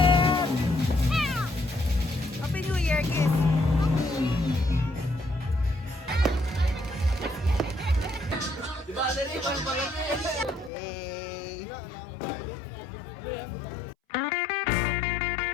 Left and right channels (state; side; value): drops out; right; at 10.7 s